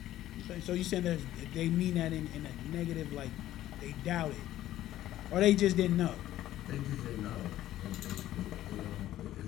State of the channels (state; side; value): quieter; right; 13.6 dB